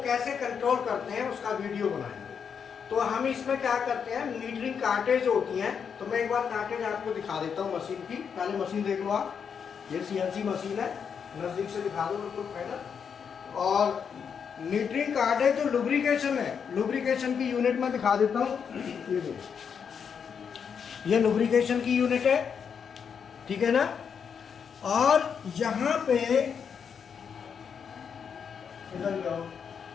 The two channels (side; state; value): right; quieter; 6.9 dB